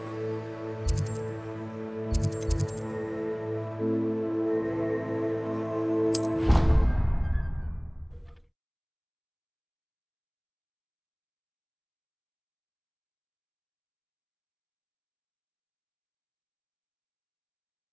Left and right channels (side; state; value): both; identical; correlation 1.00